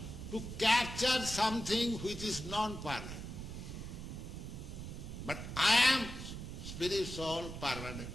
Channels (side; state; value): right; noise; rumble, 8 dB below the sound